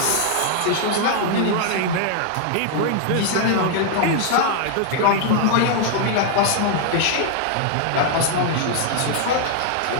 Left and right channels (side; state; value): both; different; correlation 0.00